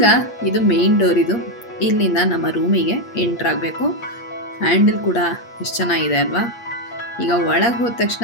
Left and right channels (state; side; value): late; right; 8.5 ms